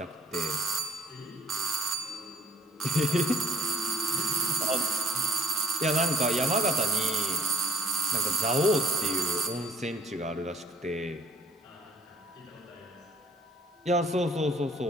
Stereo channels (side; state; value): both; normal; correlation 0.56